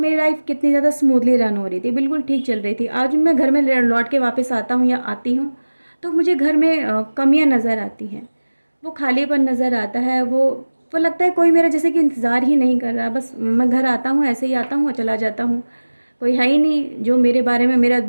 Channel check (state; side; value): inverted; both; correlation -1.00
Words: लाइफ कितनी ज़्यादा स्मूथली रन हो रही थी, बिल्कुल ठीक चल रही थी। आज मैं घर में लौट के वापस आता हूँ या आती हूँ तो मुझे घर में कमियाँ नज़र आती हैं, वो खालीपन नज़र आता है, वो लगता है कोई मेरा जैसे कि इंतज़ार ही नहीं कर रहा। बस मैं घर आता हूँ, ऐसे ही आता हूँ और चला जाता हूँ, कोई है ही नहीं जो मेरे बारे में मेरा